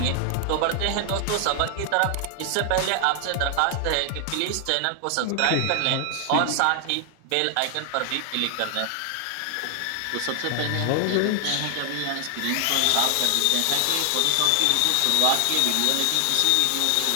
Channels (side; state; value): both; different; correlation 0.00